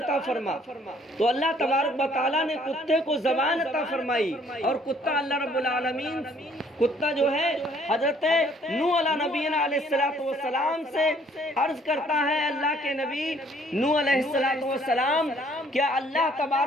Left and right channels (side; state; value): both; normal; correlation 0.61